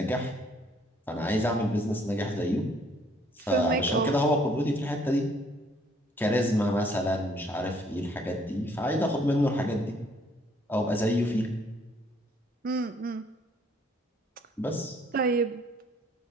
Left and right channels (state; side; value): normal; both; correlation 0.63